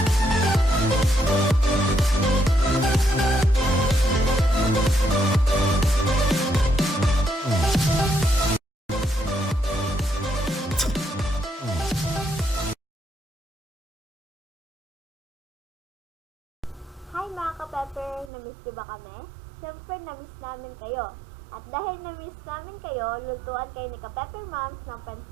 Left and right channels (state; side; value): drops out; left; at 18.3 s